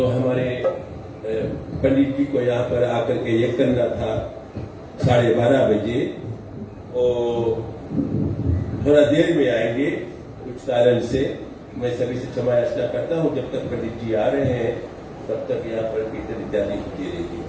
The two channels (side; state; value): both; identical; correlation 1.00